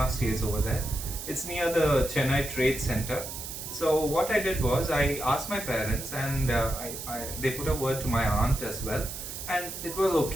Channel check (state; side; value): noise; right; hiss, 8 dB below the sound